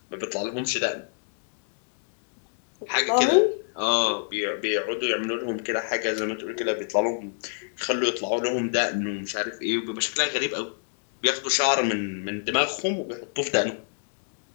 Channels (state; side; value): silent; right; digital silence